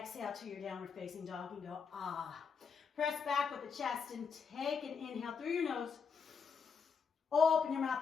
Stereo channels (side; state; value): right; quieter; 5.9 dB